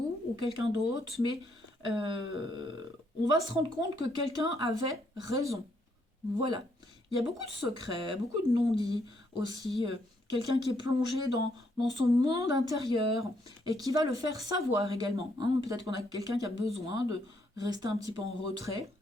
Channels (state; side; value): normal; both; correlation 0.73